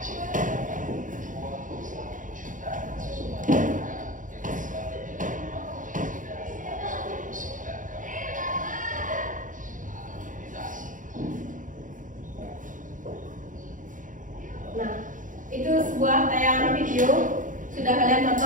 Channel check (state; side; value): late; left; 0.38 ms